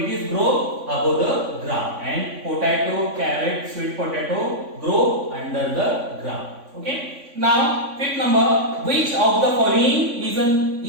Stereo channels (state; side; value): late; left; 3.5 ms